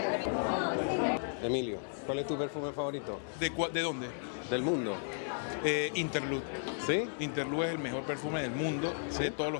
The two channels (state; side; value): silent; right; 55 dB below the other